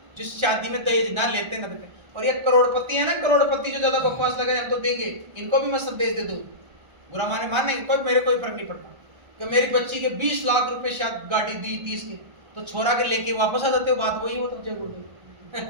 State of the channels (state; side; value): late; left; 1.3 ms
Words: जिस शादी में दहेज ना लेते ना देते। और ये करोड़पति है ना, करोड़पति जो ज्यादा बकवास लगे हम तो देंगे, इनको भी मैं संदेश दे दूं, बुरा माने मानने कोई, मेरे कोई फर्क नहीं पड़ता कि मेरी बच्ची के 20 लाख रुपए शायद गाड़ी दी 30 की, तो छोरा के लेके वापस आ जाते हो, बात वही हो तो जय